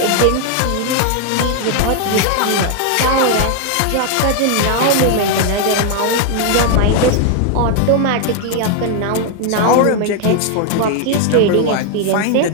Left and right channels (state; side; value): different; both; correlation 0.00